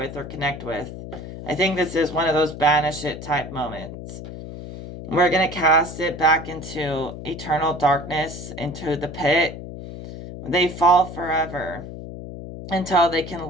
or connect with. I think this is one of those banish it type moments. We're going to cast it back into eternal darkness, into the pit. They fall forever until they can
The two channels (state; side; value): noise; left; hum, 11 dB below the sound